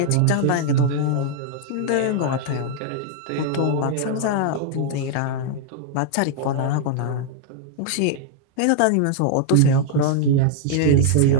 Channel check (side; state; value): both; different; correlation 0.00